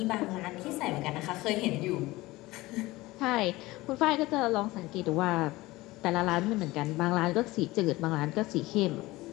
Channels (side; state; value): right; quieter; 19.5 dB